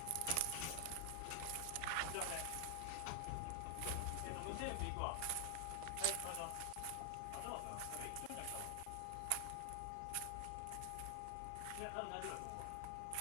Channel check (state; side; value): different; both; correlation 0.00